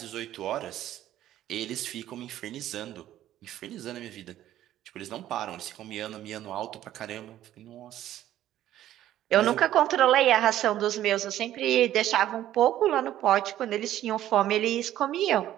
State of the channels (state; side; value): quieter; left; 12.8 dB